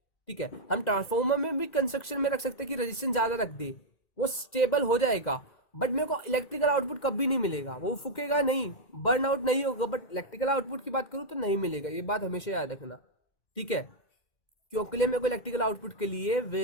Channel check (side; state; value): right; late; 2.0 ms